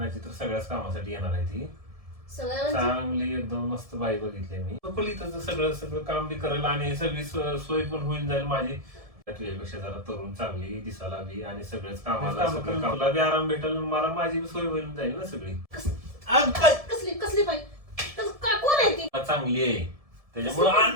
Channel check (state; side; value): late; left; 1.7 ms